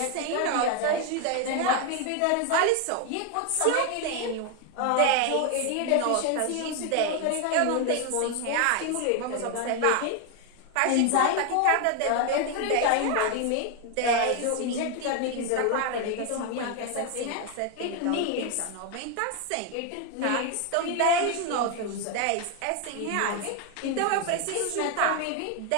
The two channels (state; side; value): different; both; correlation 0.01